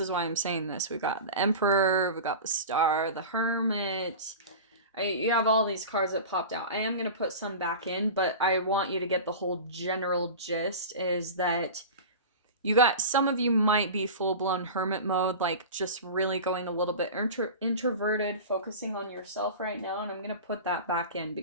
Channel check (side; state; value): both; inverted; correlation -0.31